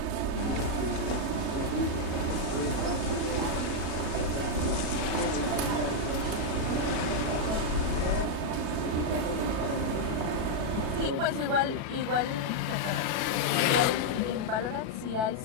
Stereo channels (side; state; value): left; late; 37 ms